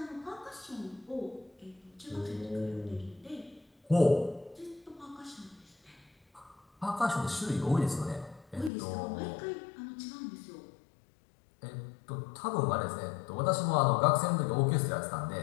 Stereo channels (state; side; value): drops out; right; at 8.7 s